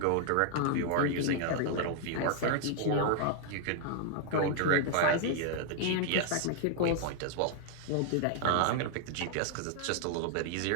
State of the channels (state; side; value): different; both; correlation 0.00